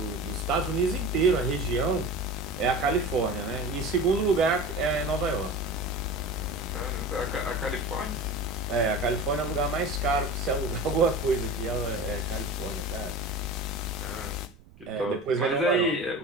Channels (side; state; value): right; noise; rumble, 25 dB below the sound